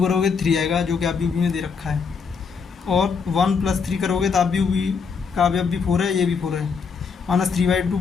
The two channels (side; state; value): right; quieter; 5.6 dB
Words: करोगे 3 आएगा जो कि अवयव बी में दे रखा है, और 1 + 3 करोगे तो अवयव बी का अवयव भी 4 है, ये भी 4 है। -3/2